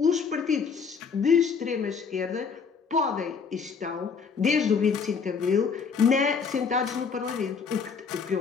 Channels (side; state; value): right; quieter; 5.7 dB